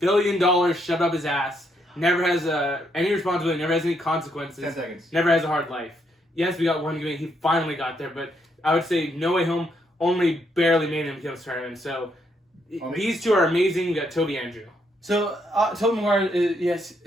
shoved up his ass, never has any responsibility, never has any consequences, 10 seconds. Never has a hard life. Yes, we got one good movie. He finally got there, but I would say No Way Home only barely made him become Spider-Man. So these 2 are amazing. We got Toby Andrew. So, Tobey Maguire, yes,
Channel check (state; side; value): normal; both; correlation 0.75